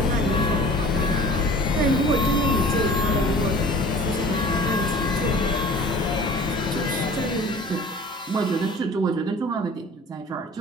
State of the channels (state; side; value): normal; both; correlation 0.45